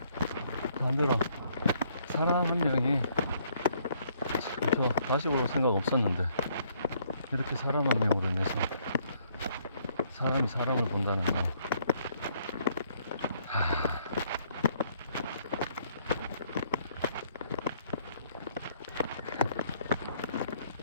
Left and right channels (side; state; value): both; inverted; correlation -0.66